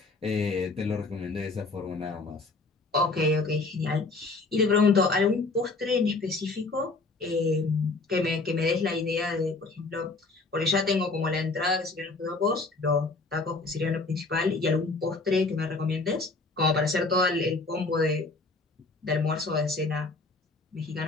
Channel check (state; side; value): quieter; right; 3.6 dB